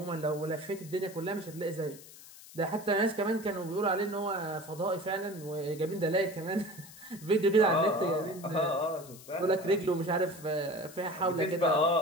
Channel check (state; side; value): noise; left; hiss, 18 dB below the sound